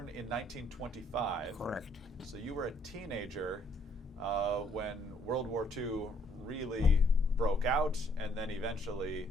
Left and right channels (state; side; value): normal; both; correlation 0.66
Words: in 1925. Correct. So you were a teenager when World War II really broke out, and then eventually